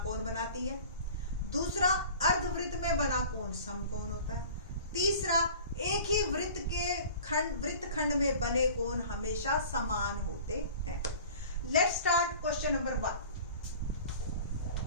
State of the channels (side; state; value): both; inverted; correlation -0.43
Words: कोण बनाती है। दूसरा, अर्धवृत्त में बना कोण समकोण होता है। तीसरा, एक ही वृत्तखंड में बने कोण हमेशा समान होते हैं। Let's start question number 1।